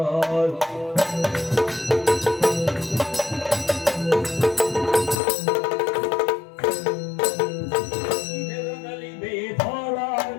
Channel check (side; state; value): right; drops out; at 5.2 s